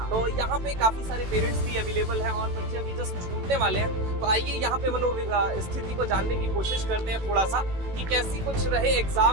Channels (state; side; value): late; left; 18 ms